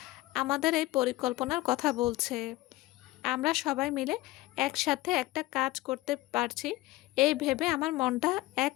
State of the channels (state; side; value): quieter; right; 18.7 dB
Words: আমাদের এই পরিকল্পনার কথা বলছে। আমরা সবাই মিলে একসাথে একটা কাজ করতে পারছি এই ভেবে আমার মনটা এক